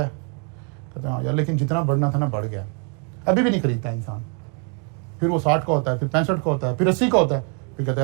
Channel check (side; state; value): left; quieter; 38.6 dB